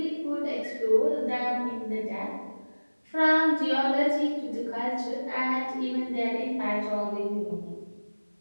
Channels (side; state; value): both; inverted; correlation -1.00